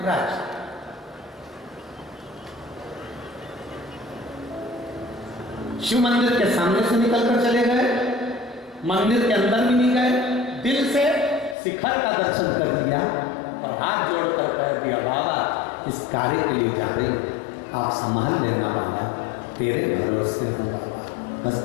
राजी। शिव मंदिर के सामने से निकलकर चले गए, मंदिर के अंदर भी नहीं गए, दिल से शिखर का दर्शन कर लिया और हाथ जोड़कर कह दिया, बाबा इस कार्य के लिए जा रही हूं, आप संभाल लेना बाबा, तेरे भरोसे हो बाबा, बस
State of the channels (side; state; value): right; drops out; at 11.6 s